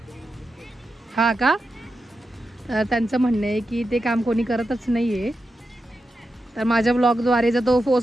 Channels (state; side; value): normal; both; correlation 0.89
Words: हा का, तर त्यांचं म्हणणं आहे की ते काम कोणी करतच नाहीये. तर माझ्या ब्लॉगद्वारे जर तो